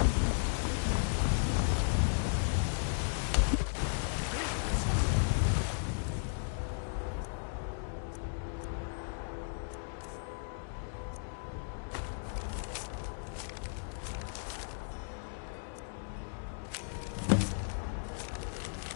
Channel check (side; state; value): right; silent; digital silence